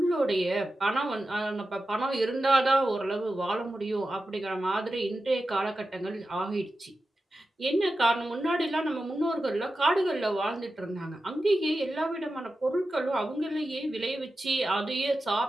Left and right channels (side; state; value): both; normal; correlation 0.92